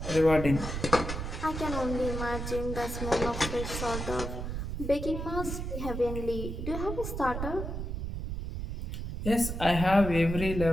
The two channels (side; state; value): right; noise; rumble, 5 dB below the sound